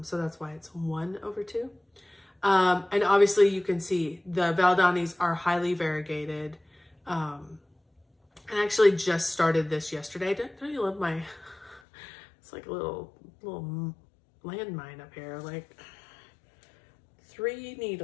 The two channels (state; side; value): drops out; right; at 11.8 s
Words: So that's why it's 1 over 2. And obviously you can see the Valdanis are highly variegated. I actually just started this yesterday. Don't you love my, it's like a little landmine up here, like 3